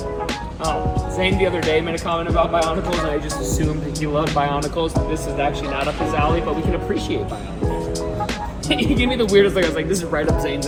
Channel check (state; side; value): identical; both; correlation 1.00